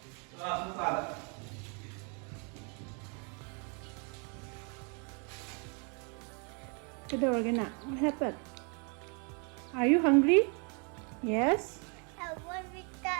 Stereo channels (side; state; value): left; quieter; 36.0 dB